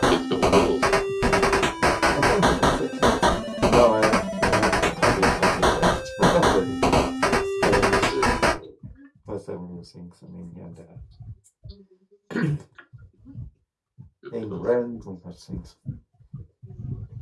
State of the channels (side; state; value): both; identical; correlation 1.00